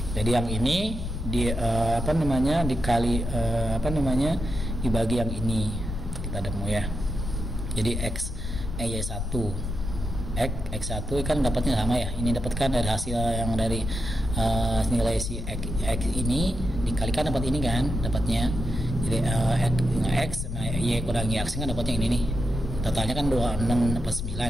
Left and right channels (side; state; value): left; noise; rumble, 4 dB below the sound